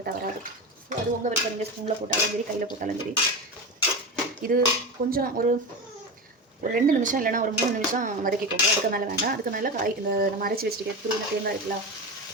வராது. ஸோ அது உங்கள் விருப்பம். நீங்கள் ஸ்பூனில் போட்டாலும் சரி, கையில் போட்டாலும் சரி. இது கொஞ்சம் ஒரு 2 நிமிஷம் இல்லைனா ஒரு 3 நிமிஷம் வதக்கிக்கோங்க. அதுக்கு மேலே வேண்டாம். அதுக்கு மேலே இந்த நம்ம அரைச்சி வச்சுருக்கேன் துருவின தேங்காய் இருக்குல்ல,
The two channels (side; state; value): both; normal; correlation 0.23